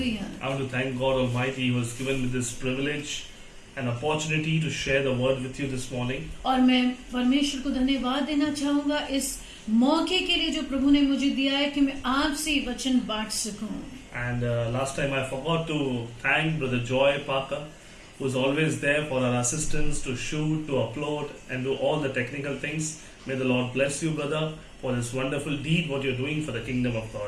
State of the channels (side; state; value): both; identical; correlation 1.00